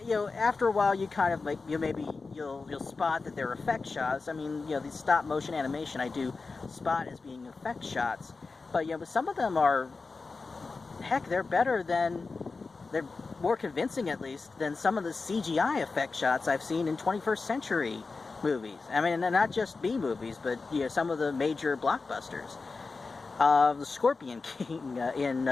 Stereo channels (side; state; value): right; quieter; 4.1 dB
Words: a while, you kind of you'll spot that they're effect shots. I mean, these stop motion animation I do spot as being effect shots, but but some of them are, heck, they're more convincing at least than some of the CGI effect shots I've seen in 21st century movies. I mean, not just B movies, but some of the major blockbusters. The Scorpion King in